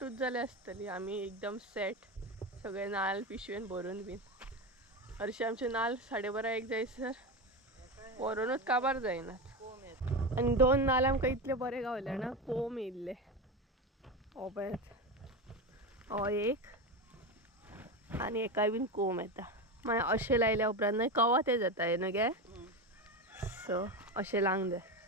जाले असतली आम्ही एकदम सेट सगळे नाल पिशवेन भरून बीन हरशी आमचे नाल 12:30 1 जायसर व्हरूनच काबार जायनात आणि 2 नाल आमकां इतले बरे गावले ना कोंब येयल्ले हो पळयात हो एक आणि एका बीन कोंब येता मागीर अशें लायल्या उपरांत न्हय कवा ते जाता न्हय गे सो अशें लावंक जाय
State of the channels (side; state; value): both; normal; correlation 0.19